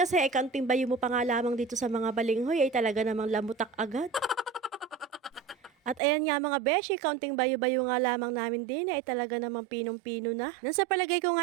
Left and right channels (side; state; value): left; drops out; at 6.0 s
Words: ay kaunting bayo mo pa nga lamang dito sa mga balinghoy ay talaga namang lamutak agad. At ayan nga mga beshi, kaunting bayo-bayo nga lamang namin din ay talaga namang pinong-pino na. Nang sa palagay ko